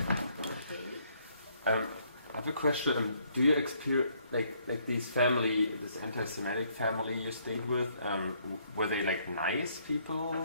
I have a question. Do you experience like this anti-Semitic family you stayed with? Were they like nice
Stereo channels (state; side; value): inverted; both; correlation -0.67